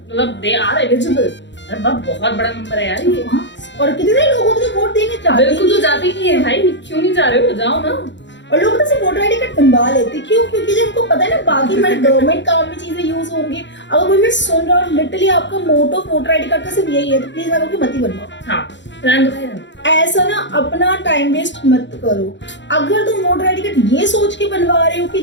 दे आर एलिजिबल। अरे बाप, बहुत बड़ा नंबर है यार ये, और कितने लोगों को वोट देने चाहते हैं, बिल्कुल तो जाते ही है भाई, क्यों नहीं जा रहे हो, जाओ ना। और लोग तो सिर्फ वोटर आईडी कार्ड बनवा लेते, क्यों? क्योंकि जब उनको पता है ना बाकी हमारे गवर्नमेंट काम में चीजें यूज होंगी। अगर कोई मैं सुन रहा हूँ लिटरली आपका मोटो वोटर आईडी कार्ड का सिर्फ यही है, तो प्लीज आप लोग मत ही बनवाओ। हाँ, रहने दो भाई, ऐसा ना अपना टाइम वेस्ट मत करो। अगर तुम वोटर आईडी कार्ड ये सोच के बनवा रहे हो कि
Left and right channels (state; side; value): late; right; 0.53 ms